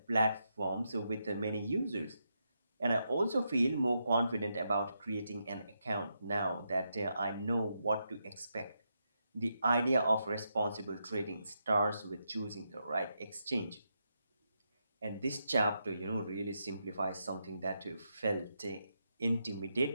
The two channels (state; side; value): inverted; both; correlation -0.83